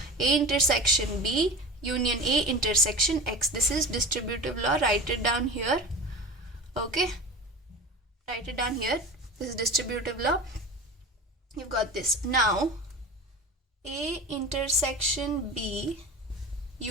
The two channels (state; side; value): normal; both; correlation 0.32